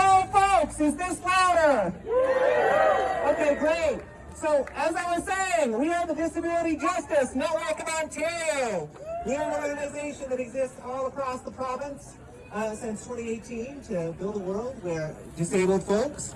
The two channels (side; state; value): both; identical; correlation 1.00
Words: folks! Is this louder? Okay, great. So, as I was saying, we are the Disability Justice Network of Ontario. We are an organization that exists all across the province since 2018 to build a world where disabled folks